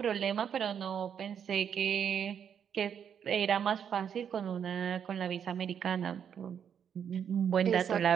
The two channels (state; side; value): quieter; left; 8.1 dB